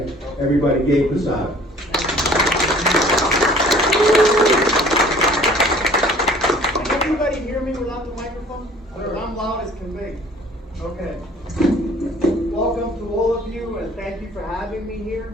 Everybody, Gabe Posada. Can everybody hear me without the microphone? I'm loud as can be. Okay. Welcome to all of you, and thank you for having me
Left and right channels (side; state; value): both; normal; correlation 0.52